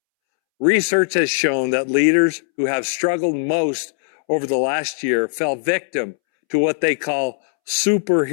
Research has shown that leaders who have struggled most over the last year fell victim to what they call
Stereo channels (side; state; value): right; silent; 66 dB below the other